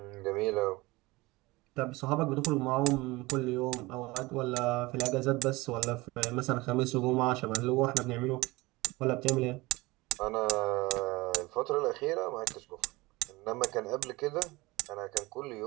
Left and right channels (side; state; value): left; quieter; 21.8 dB